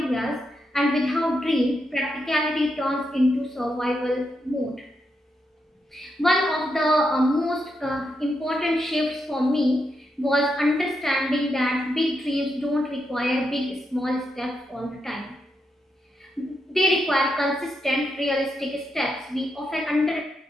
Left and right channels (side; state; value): both; normal; correlation 0.83